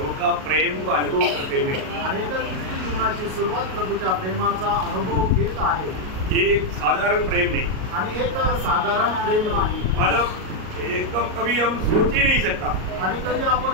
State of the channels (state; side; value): late; left; 38 ms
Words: का प्रेम को अनुभव करते हुए आणि ख्रिस्ती जीवनाची सुरुवात प्रभूच्या प्रेमाचा अनुभव घेत आहे। ये एक साधारण प्रेम नहीं, आणि एक साधारण प्रेम नाही, मतलब एकदम कभी हम सोच ही नहीं सकता, आणि कधी